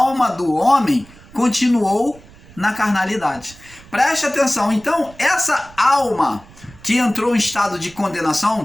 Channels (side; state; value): right; noise; rumble, 22 dB below the sound